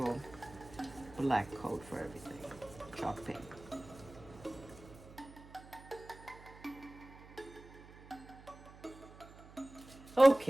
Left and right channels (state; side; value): noise; right; hum, 19 dB below the sound